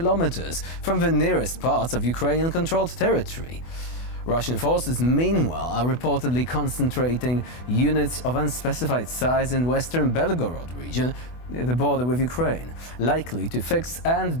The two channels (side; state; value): right; late; 24 ms